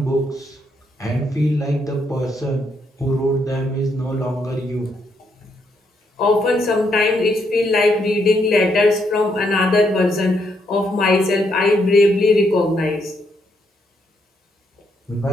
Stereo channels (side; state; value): both; normal; correlation 0.76